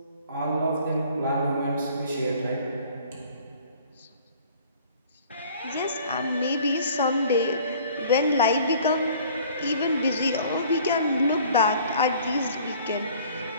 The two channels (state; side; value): inverted; both; correlation -0.52